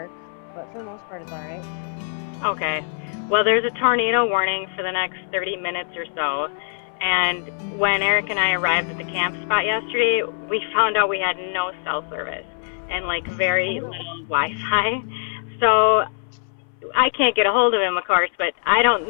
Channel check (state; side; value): silent; right; 60 dB below the other